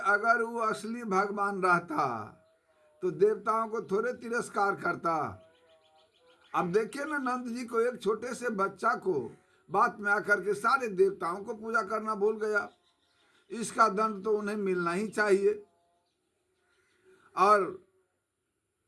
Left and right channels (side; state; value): both; identical; correlation 1.00